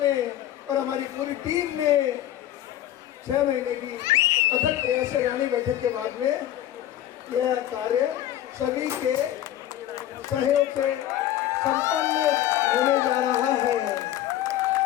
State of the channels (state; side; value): quieter; right; 12.6 dB